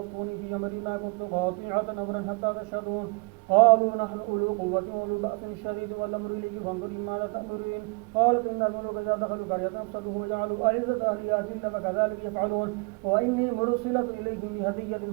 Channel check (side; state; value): left; quieter; 32.1 dB